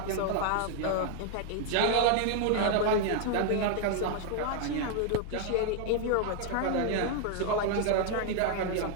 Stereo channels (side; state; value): both; different; correlation 0.00